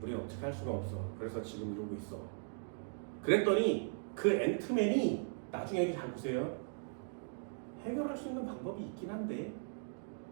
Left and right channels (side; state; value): left; silent; digital silence